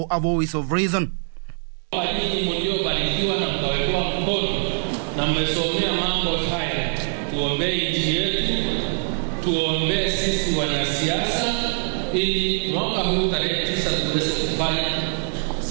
a voice of reason. Ili mwaka huu tarehe 9 tuweze kufanya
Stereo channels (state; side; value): silent; left; digital silence